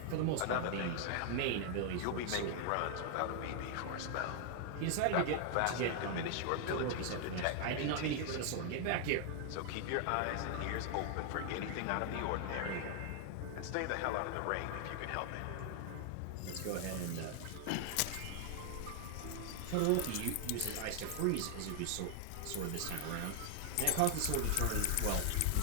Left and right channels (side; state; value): both; different; correlation 0.00